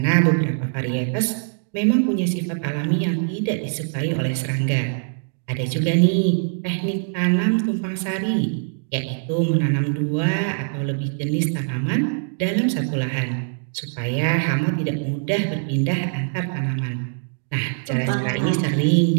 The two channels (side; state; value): left; silent; 62 dB below the other